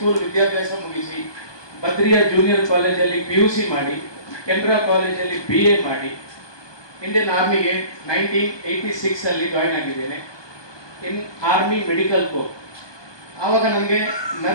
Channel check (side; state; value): right; late; 1.2 ms